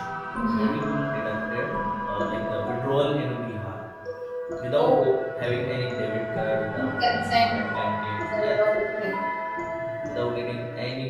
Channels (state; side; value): identical; both; correlation 1.00